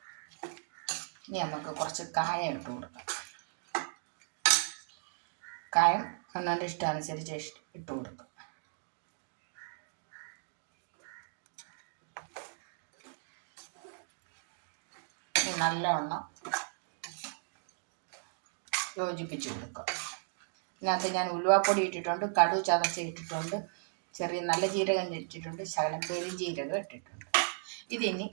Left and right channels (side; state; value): left; silent; digital silence